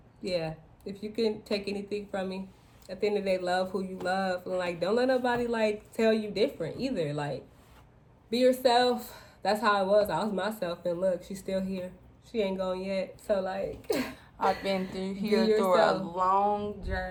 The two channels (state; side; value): identical; both; correlation 1.00